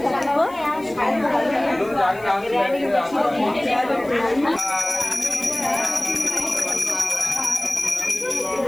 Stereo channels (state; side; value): noise; left; hiss, 24 dB below the sound